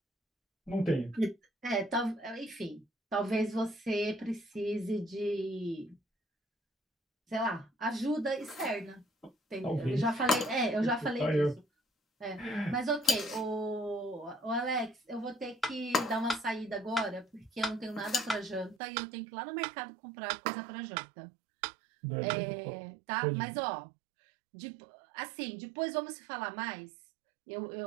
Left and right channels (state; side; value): drops out; left; at 18.8 s